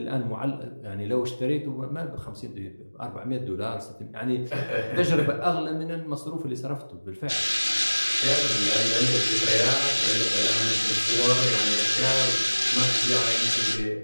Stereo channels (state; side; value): inverted; both; correlation -1.00